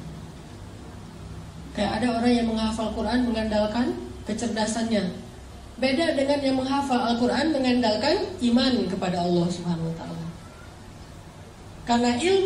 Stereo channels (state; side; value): identical; both; correlation 1.00